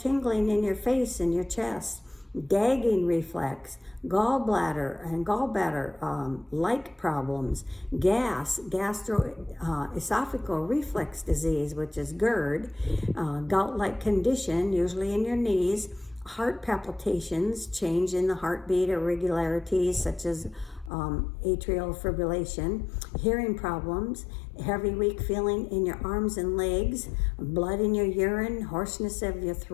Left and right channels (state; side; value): drops out; right; at 20.9 s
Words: in your face and your chest, gagging reflex, gallbladder and gallbladder-like problems, gastroesophageal reflex disease, which is GERD, gout-like condition, usually in your knees, heart palpitations, change in the heartbeat, irregularities such as atrial fibrillation, hearing problems, heavy, weak feeling in your arms and legs, blood in your urine, hoarseness of your